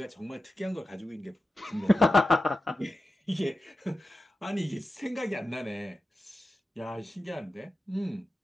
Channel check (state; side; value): normal; both; correlation 0.92